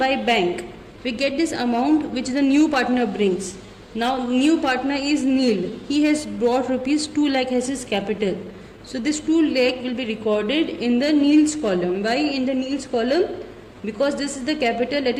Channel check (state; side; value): identical; both; correlation 1.00